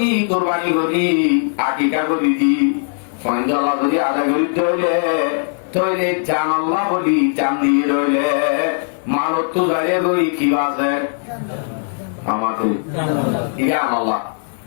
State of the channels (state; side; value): silent; right; digital silence